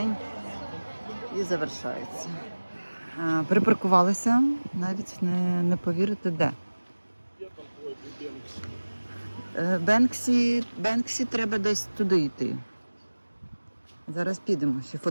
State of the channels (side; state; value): both; inverted; correlation -1.00